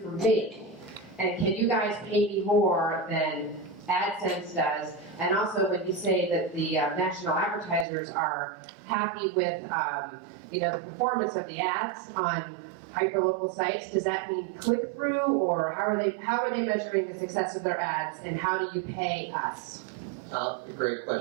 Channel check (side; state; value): left; drops out; at 7.9 s